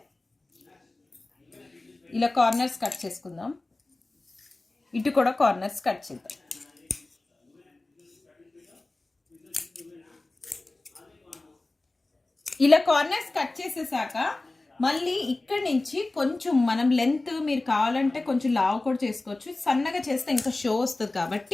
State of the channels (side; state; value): right; quieter; 3.0 dB